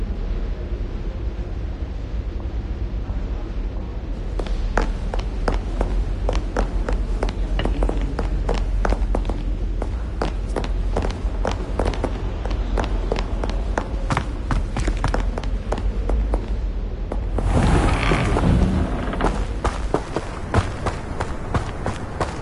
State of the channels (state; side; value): identical; both; correlation 1.00